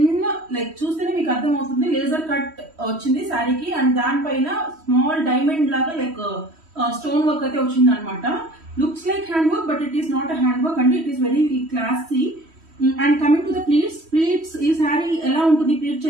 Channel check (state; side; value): late; left; 3.1 ms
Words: లైక్ చూస్తేనే మీకు అర్థం అవుతుంది, లేజర్ కట్ వచ్చింది శారీకి. అండ్ దానిపైన స్మాల్ డైమండ్ లాగా లైక్ స్టోన్ వర్క్ అయితే వచ్చింది అనమాట. Looks like hand work, but it is not a hand work అండి. It is very classy. And coming to the pleats ఈ శారీ ఎలా ఉంటుంది ప్లీట్